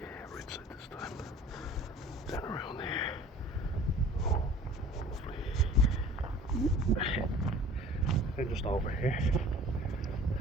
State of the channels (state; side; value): normal; both; correlation 0.46